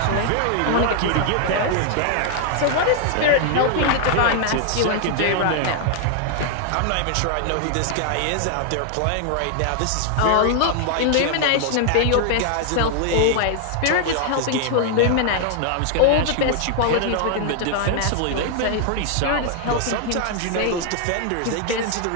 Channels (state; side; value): different; both; correlation 0.00